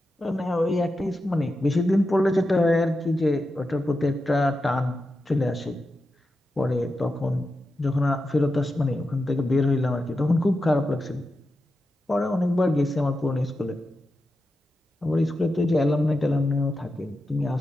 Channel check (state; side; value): normal; both; correlation 0.90